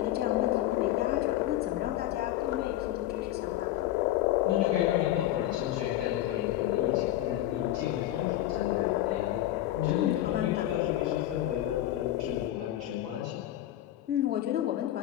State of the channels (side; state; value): right; quieter; 14.1 dB